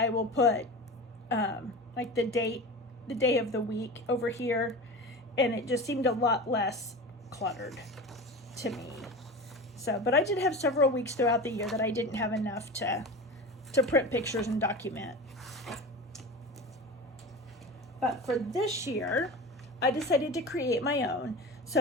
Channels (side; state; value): both; normal; correlation 0.30